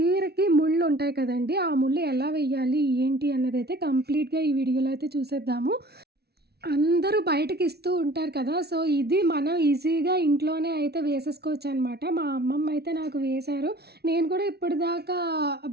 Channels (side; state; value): left; late; 0.47 ms